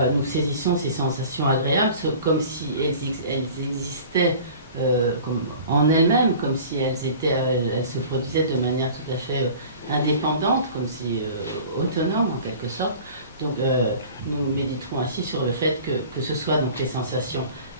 nous saisissons ces sensations agréables comme si elles existaient comme en elles-mêmes, comme si elles se produisaient de manière tout à fait indépendante, comme si autonome en quelque sorte. Donc nous méditerons ainsi sur le fait que ce soit donc les sensations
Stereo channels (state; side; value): inverted; both; correlation -0.43